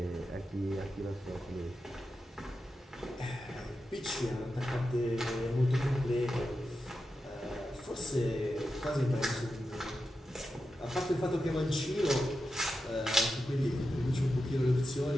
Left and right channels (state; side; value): normal; both; correlation 0.90